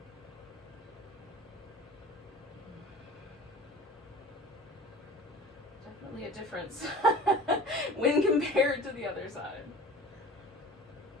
Definitely a difference when compared to the other side.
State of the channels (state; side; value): normal; both; correlation 0.42